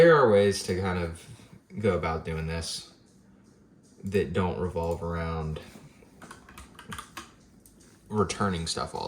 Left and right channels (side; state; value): both; identical; correlation 1.00